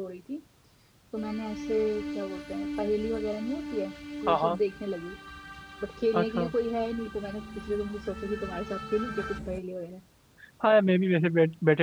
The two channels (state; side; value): identical; both; correlation 1.00